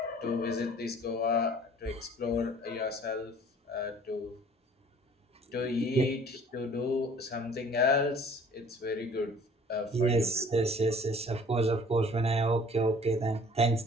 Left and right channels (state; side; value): normal; both; correlation 0.52